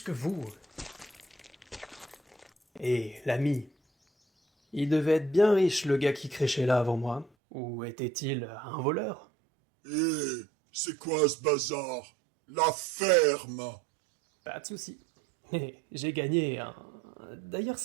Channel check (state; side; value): drops out; left; at 7.3 s